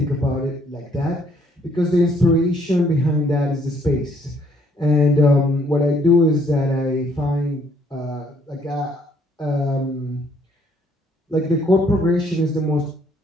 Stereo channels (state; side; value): normal; both; correlation 0.66